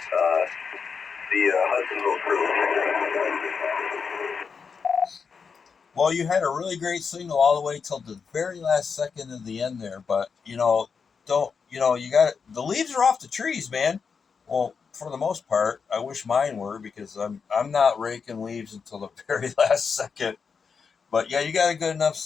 Hudsonville crew. Well, you had a really great signal all the way till the very last second of the end there, but you got the leaves are off the trees, man. Well, for the most part, I wish mine were, because I'm not raking leaves until the very last second. But yeah, you got a good enough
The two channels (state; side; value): quieter; right; 5.7 dB